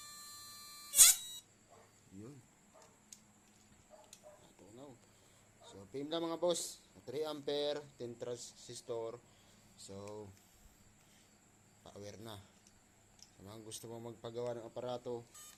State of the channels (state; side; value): identical; both; correlation 1.00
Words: Yun. Natunaw. So PM lang mga boss. 3 ampere, 10 transistor. So power na. Sa mga gusto mo magpagawa ng aparato,